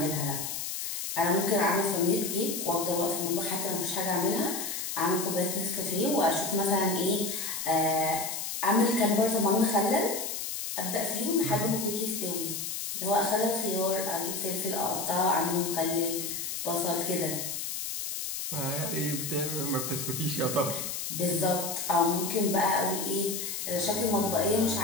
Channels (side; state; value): left; noise; hiss, 4 dB below the sound